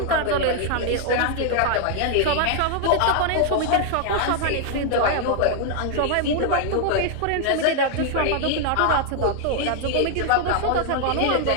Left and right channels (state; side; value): different; both; correlation 0.00